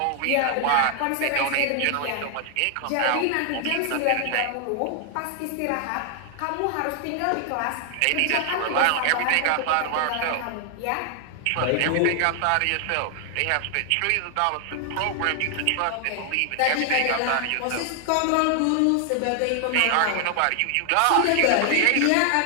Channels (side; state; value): both; different; correlation 0.00